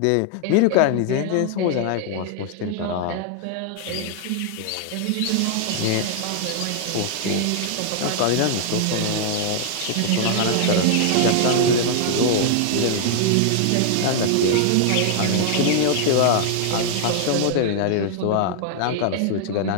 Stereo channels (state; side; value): different; both; correlation 0.00